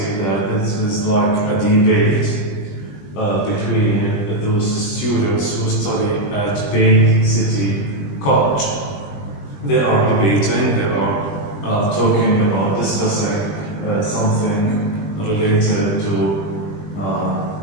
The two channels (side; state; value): right; late; 20 ms